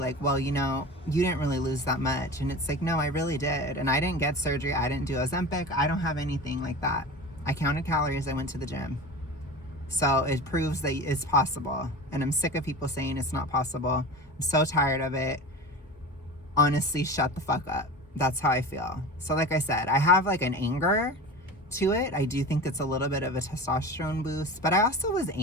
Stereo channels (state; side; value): normal; both; correlation 0.32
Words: well, you know, you didn't really lose that much. And it's like, no, I really did. And I didn't get surgery. I didn't do Ozempic. I don't have anything like that. I counted calories. I went to the gym. So it proves that it's possible. And I'm sick of people saying it's not possible. I'm so tired of it. Honestly, shut the fuck up. That's how I feel. So like I said, I have like an anger to it. I do think it's a little bit of a testosterone boost, but I also was